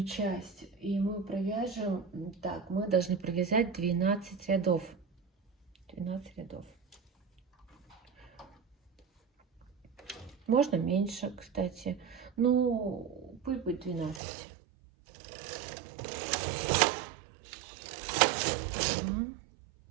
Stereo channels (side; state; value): left; drops out; at 14.2 s